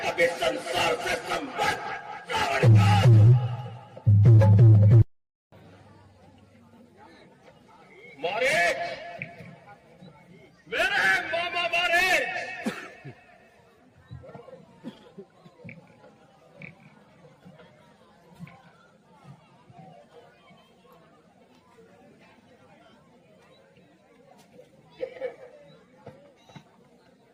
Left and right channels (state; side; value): identical; both; correlation 1.00